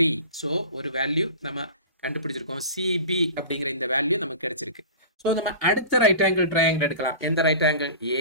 So ஒரு வேல்யூ நம்ம கண்டுபிடிச்சிருக்கோம், சிபி அப்படிங்கிற இந்த வேல்யூ நமக்கு கிடைச்சிருக்கு. ஸோ நம்ம அடுத்த ரைட் ஆங்கிள் ட்ரையாங்கிள் எடுக்கலாம். எந்த right angle,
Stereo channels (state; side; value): inverted; both; correlation -0.36